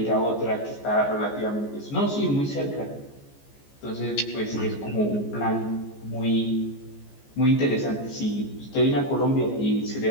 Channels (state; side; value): late; right; 14 ms